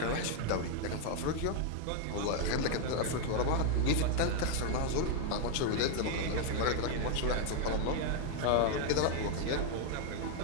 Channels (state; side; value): different; both; correlation 0.00